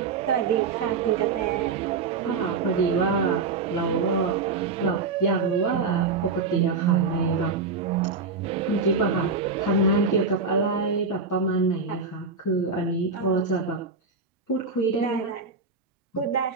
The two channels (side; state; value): left; quieter; 4.5 dB